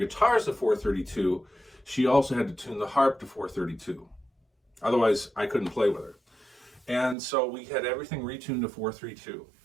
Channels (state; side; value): drops out; left; at 7.2 s